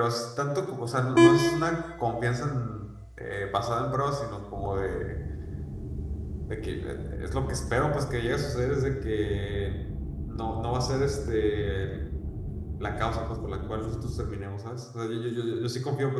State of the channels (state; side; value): identical; both; correlation 1.00